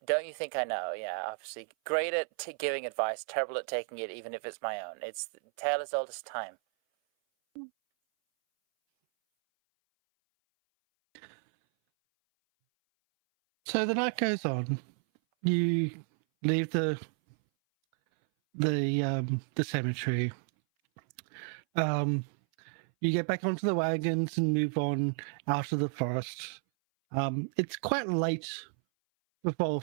Don't you think I know? Yeah, obviously. Great at giving advice, terrible at taking it, even if it's my own. It's the tale as old as time. So the night goes on. You leave the cemetery. You get back onto the wagons and move on out of the forest. It's quite late before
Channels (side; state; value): left; silent; 56 dB below the other